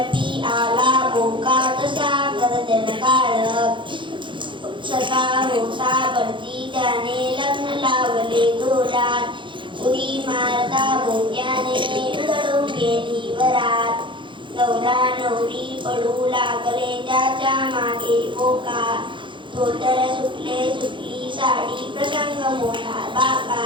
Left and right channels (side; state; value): left; late; 0.24 ms